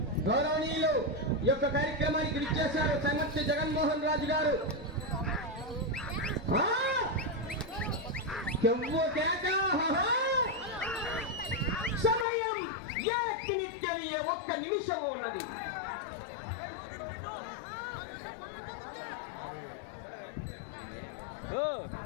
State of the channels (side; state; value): right; drops out; at 12.2 s